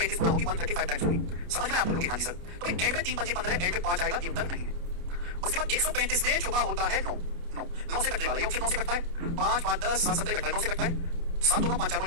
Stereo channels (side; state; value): left; late; 29 ms